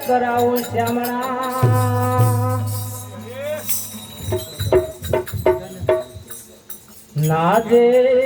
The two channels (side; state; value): both; identical; correlation 1.00